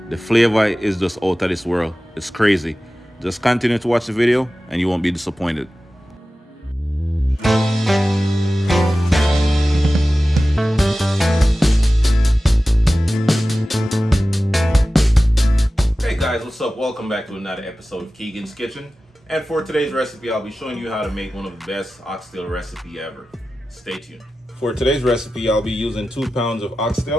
The flavor is just out of this world. It's crazy. Just continue to watch the video and you won't be disappointed. Hey guys, what's up? Welcome back to another episode of Keegan's Kitchen. And for today's recipe, I'll be showing you how to make one of the best oxtail recipe ever. Stay tuned. For today's recipe, I'll be using 2 pounds of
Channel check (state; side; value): normal; both; correlation 0.95